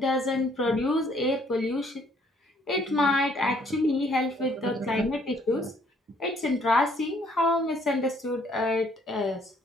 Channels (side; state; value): both; normal; correlation 0.64